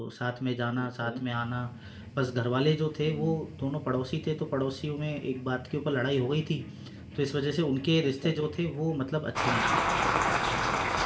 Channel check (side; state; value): both; identical; correlation 1.00